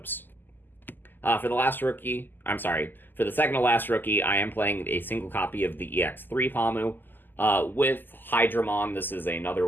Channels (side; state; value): right; late; 0.090 ms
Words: For the last rookie, for the second to last rookie, I am playing a single copy of the EX3 Pamu. With Hydramon, this is